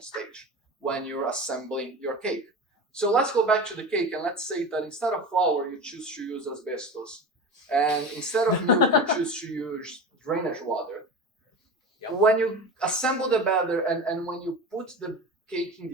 stage when you're assembling your cake. So let's go back to the cake, and let's say that instead of flour, you choose to use asbestos. And instead of milk, you choose to use drainage water. Yep. When you assemble the batter and when you put the cake in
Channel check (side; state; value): both; normal; correlation 0.29